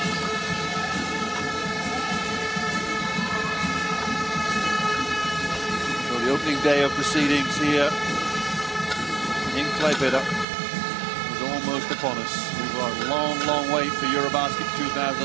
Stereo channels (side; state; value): left; drops out; at 10.5 s